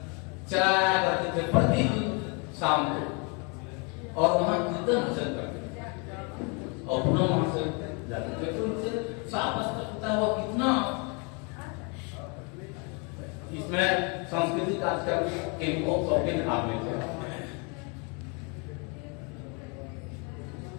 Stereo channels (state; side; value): quieter; right; 33.7 dB